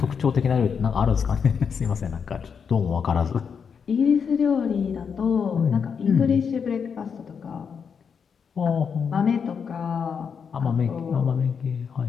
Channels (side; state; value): right; quieter; 6.5 dB